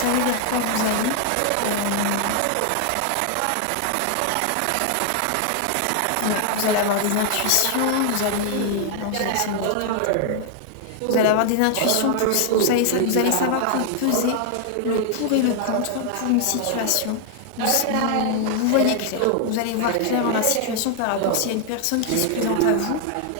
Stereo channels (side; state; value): both; different; correlation 0.00